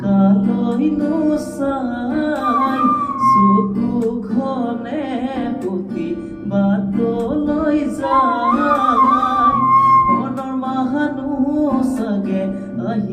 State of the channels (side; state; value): both; identical; correlation 1.00